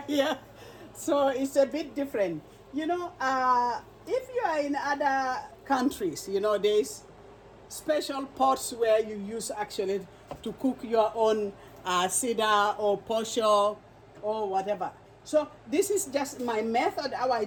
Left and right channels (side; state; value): both; identical; correlation 1.00